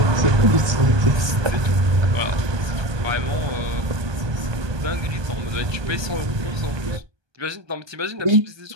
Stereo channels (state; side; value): late; left; 1.2 ms